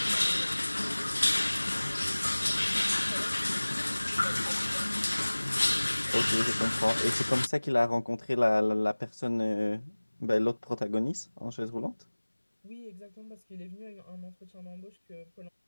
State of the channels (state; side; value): inverted; both; correlation -1.00